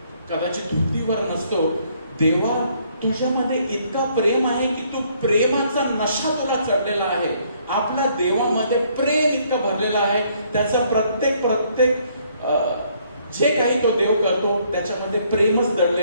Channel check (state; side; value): inverted; both; correlation -0.66